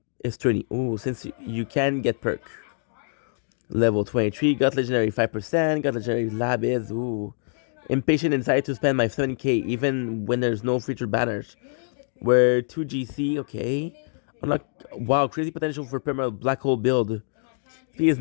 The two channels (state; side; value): silent; right; digital silence